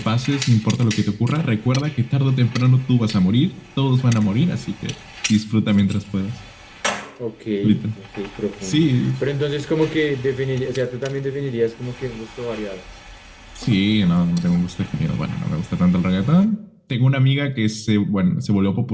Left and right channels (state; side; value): identical; both; correlation 1.00